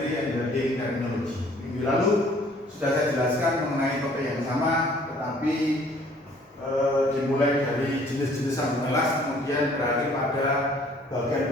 and building technology. Minggu lalu sudah saya jelaskan mengenai topik yang sama, tetapi dimulai dari jenis-jenis sambungan las, kemudian berakhir pada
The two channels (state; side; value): normal; both; correlation 0.57